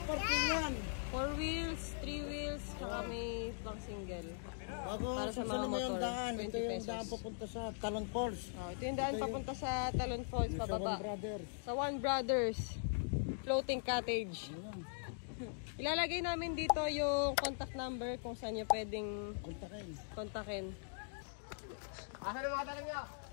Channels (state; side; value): silent; right; digital silence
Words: yan. 4 wheels, 3 wheels, saka may pang single. Para sa mga motor, daan. 20 ito yung pesos. daan papunta sa Talon Falls. Oh, ito yung daan papunta sa Talon Falls, pababa. Sa One Brothers. Sa One Brothers Floating Cottage. Ilalagay namin dito yung contact number kung saan nyo pwedeng kontakin. Asan ang mga tanong nyo?